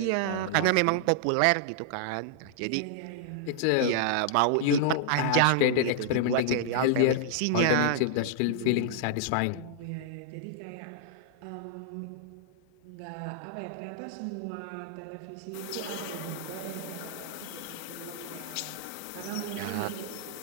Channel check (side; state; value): both; different; correlation -0.01